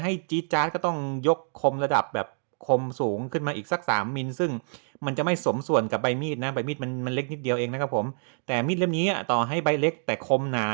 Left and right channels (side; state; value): left; silent; digital silence